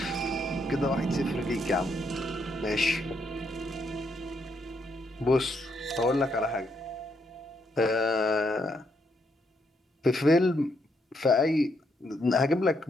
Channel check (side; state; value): both; normal; correlation 0.76